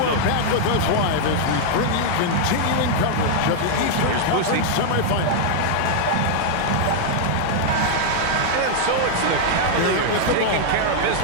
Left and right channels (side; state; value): both; different; correlation 0.00